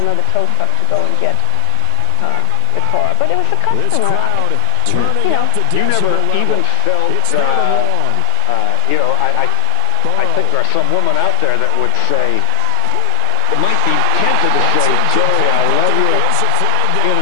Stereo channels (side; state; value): both; different; correlation 0.00